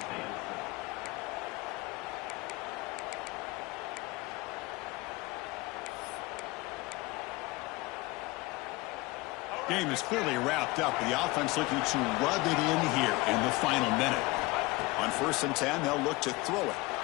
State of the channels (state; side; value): quieter; right; 22.6 dB